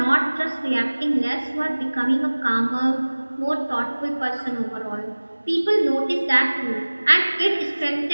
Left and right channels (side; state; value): both; inverted; correlation -1.00